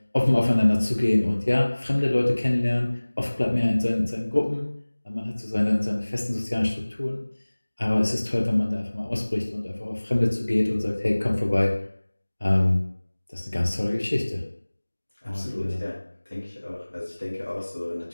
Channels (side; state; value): both; inverted; correlation -1.00